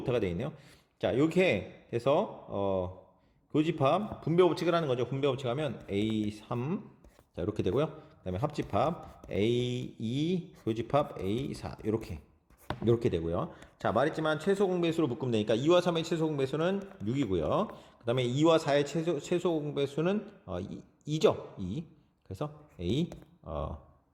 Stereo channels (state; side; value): identical; both; correlation 1.00